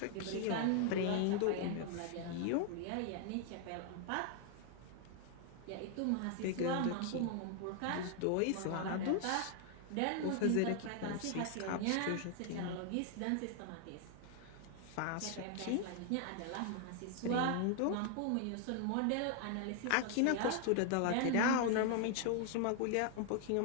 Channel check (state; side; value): different; both; correlation 0.00